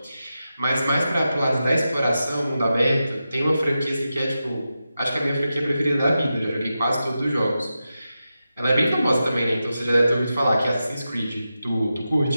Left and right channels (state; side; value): inverted; both; correlation -0.91